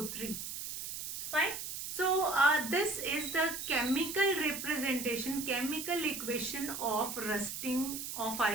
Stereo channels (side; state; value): right; noise; hiss, 6 dB below the sound